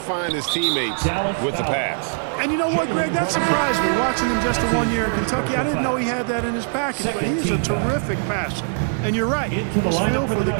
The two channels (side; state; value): left; silent; digital silence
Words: his teammates with the pass. And you know what, Greg? That surprised me. Watching him just 1 year in Kentucky, I didn't know he had that in his package. But he's a terrific passer. And you're right. His feel for the